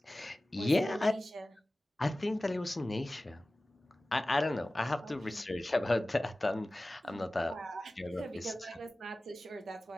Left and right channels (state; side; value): normal; both; correlation 0.97